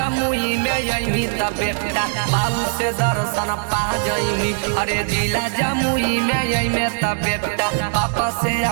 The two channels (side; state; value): left; silent; digital silence